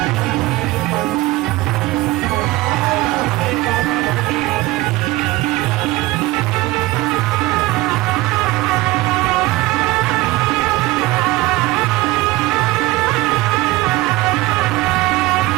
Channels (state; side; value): quieter; left; 19.1 dB